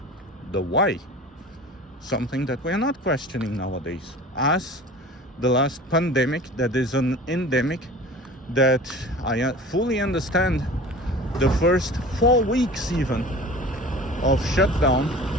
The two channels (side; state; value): both; normal; correlation 0.40